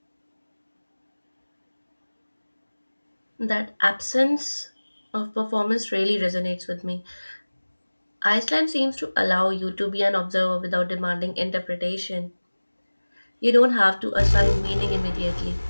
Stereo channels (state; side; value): inverted; both; correlation -1.00